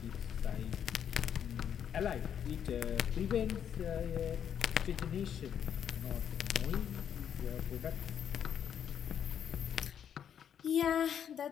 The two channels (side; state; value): right; quieter; 8.8 dB